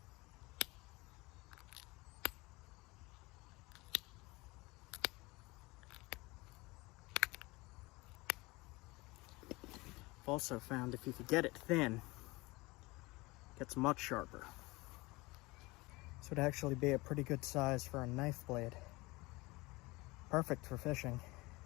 I've also found if you could get it thin, it gets much sharper. This would actually be a pretty good size for a knife blade. Perfect for fishing.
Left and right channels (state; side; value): quieter; right; 22.9 dB